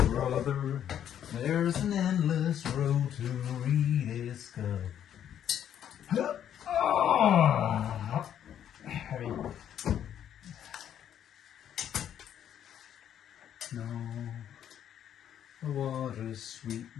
there's an endless road to rediscover. Oh, heavy. No, the water's sweet,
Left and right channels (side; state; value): right; quieter; 9.9 dB